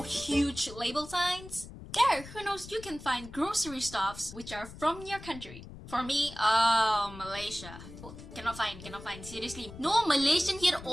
huge label signs. There, who knows, you can find grocery stuffs which are from your country. For me, Malaysia. Cannot find. Seriously, no Malaysian here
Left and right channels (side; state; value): left; noise; rumble, 15 dB below the sound